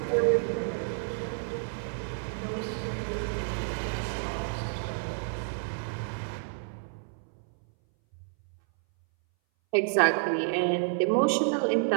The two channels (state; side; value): silent; left; 58 dB below the other